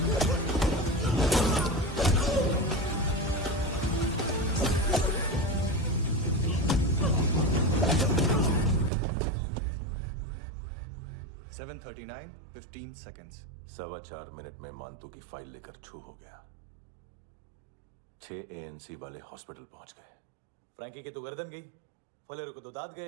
7:39 15 seconds. 4.25 मिनट में मानतू की फाइल लेकर छू हो गया। 6 ANC वाले हॉस्पिटल पहुंच गए। फ्रैंकी की तो गर्दन गई, फलेरो को तो दांत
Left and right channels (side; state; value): left; drops out; at 8.9 s